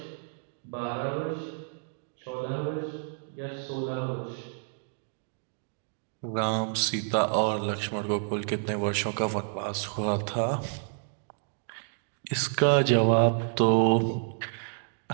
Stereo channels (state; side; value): silent; left; digital silence